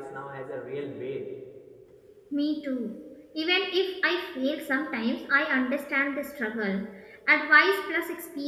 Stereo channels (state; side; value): identical; both; correlation 1.00